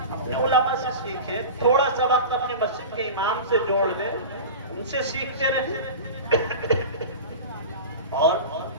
اپنے علماء سے سیکھیں. تھوڑا سا وقت اپنے مسجد کے امام سے جوڑ دیں, ان سے سیکھتے رہیں. اور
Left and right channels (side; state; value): both; inverted; correlation -0.31